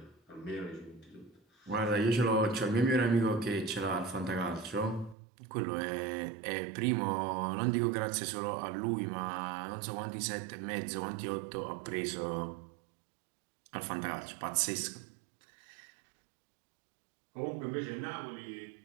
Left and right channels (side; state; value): left; drops out; at 5.2 s